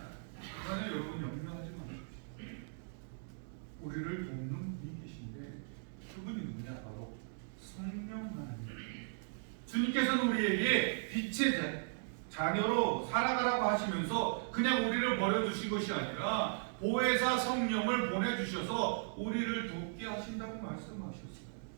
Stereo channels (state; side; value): silent; left; digital silence